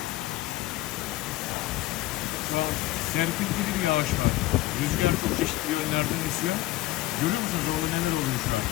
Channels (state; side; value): quieter; right; 16.8 dB